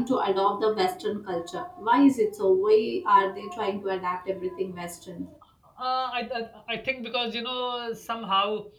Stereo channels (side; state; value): both; identical; correlation 1.00